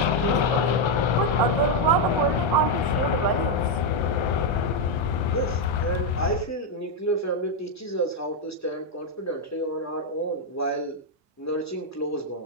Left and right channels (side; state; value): both; normal; correlation 0.01